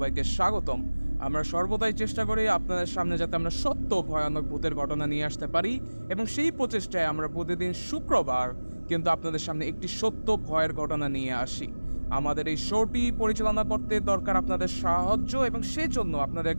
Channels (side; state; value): both; inverted; correlation -1.00